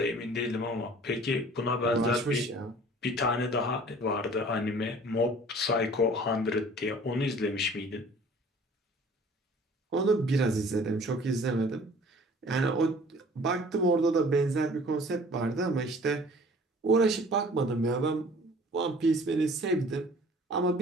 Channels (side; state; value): both; normal; correlation 0.50